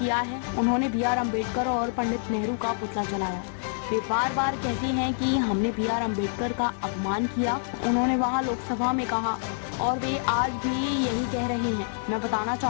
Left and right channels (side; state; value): right; silent; 60 dB below the other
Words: है। उन्होंने बी.आर. अम्बेडकर और पंडित नेहरू का पुतला जलाया। वे बार बार कहते हैं कि हमने बी.आर. अम्बेडकर का अपमान किया। उन्होंने वहां लोकसभा में कहा और वे आज भी यही कह रहे हैं। मैं बताना